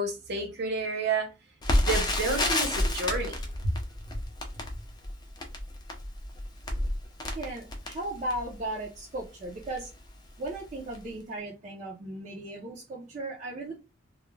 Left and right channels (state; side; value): normal; both; correlation 0.35